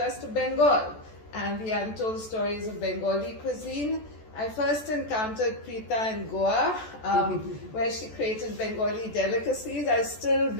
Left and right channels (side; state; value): right; late; 14 ms